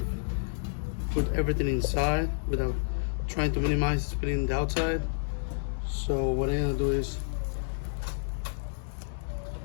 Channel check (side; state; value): right; silent; 58 dB below the other